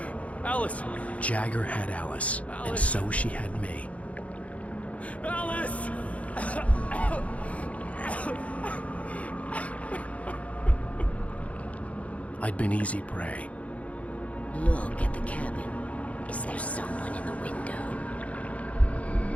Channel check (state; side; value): late; right; 0.066 ms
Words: Alice! Jagger had Alice, and so she had me. Alice! I'd been easy prey. Look at the cabin. Is there someone in the window?